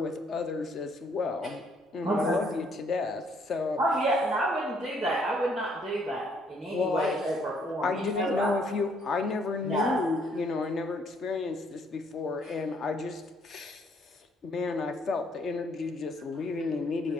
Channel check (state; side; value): normal; both; correlation 0.66